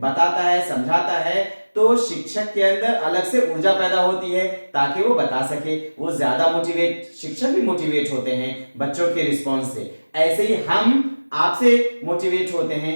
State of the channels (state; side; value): inverted; both; correlation -1.00